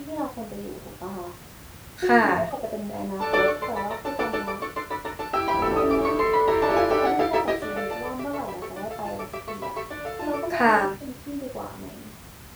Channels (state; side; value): identical; both; correlation 1.00